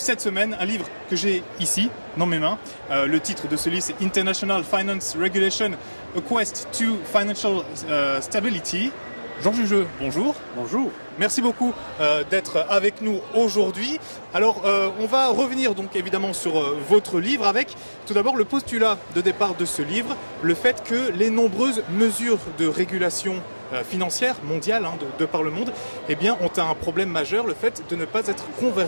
semaine, un livre que j'ai ici dans mes mains. Le titre de ce livre c'est International Finance Regulation, A Quest to Financial Stability. Jean Jugeux, bonjour. Bonjour. Merci beaucoup d'être avec nous aujourd'hui. Alors on va revenir donc évidemment sur votre livre avec tout d'abord le postulat de départ de ce livre, le fait que les nombreuses mesures de régulation financière mondiale de par le monde ont un problème majeur, le fait de ne pas être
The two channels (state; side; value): inverted; both; correlation -1.00